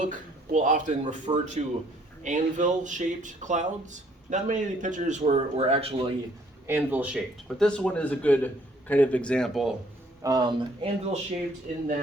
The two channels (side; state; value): both; normal; correlation 0.63